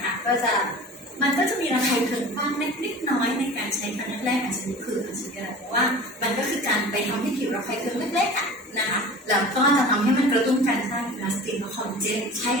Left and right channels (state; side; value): normal; both; correlation 0.39